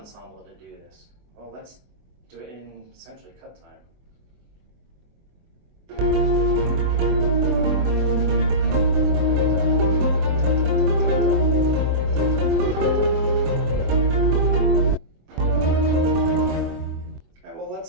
to do this, well, let's do it in essentially cut time.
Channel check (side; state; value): left; late; 23 ms